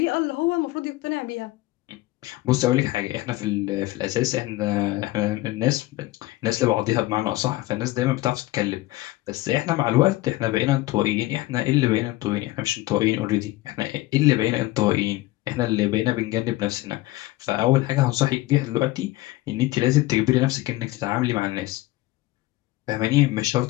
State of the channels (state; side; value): quieter; right; 18.3 dB